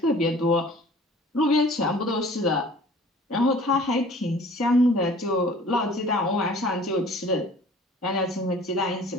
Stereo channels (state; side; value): normal; both; correlation 0.49